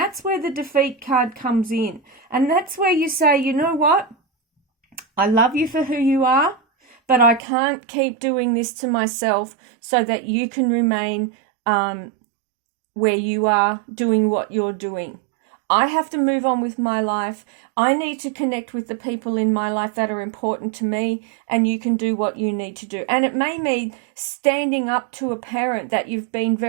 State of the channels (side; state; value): left; drops out; at 7.4 s